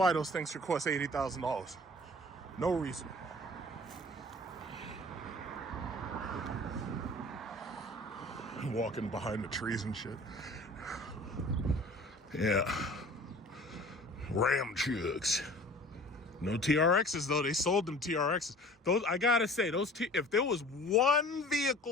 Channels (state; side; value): normal; both; correlation 0.46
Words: those things should cost $80,000. No reason. Walking behind the trees and shit. Yeah. Ram chucks. No TRXs though. They sold them TRXs. Those, I gotta say, if there was one